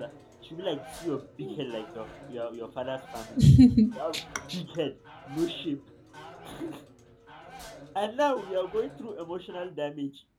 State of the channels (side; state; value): both; identical; correlation 1.00